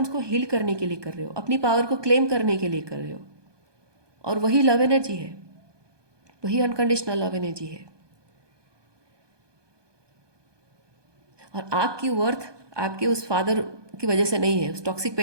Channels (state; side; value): late; left; 1.2 ms